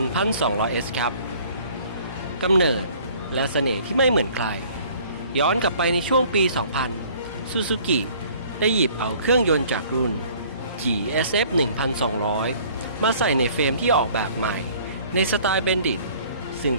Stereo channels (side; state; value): both; inverted; correlation -0.54